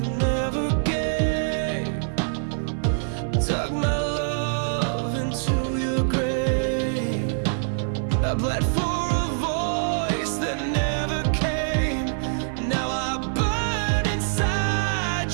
gave, dug my love into your grave. I bled for a voice that never came. Now I burn inside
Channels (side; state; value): left; silent; 57 dB below the other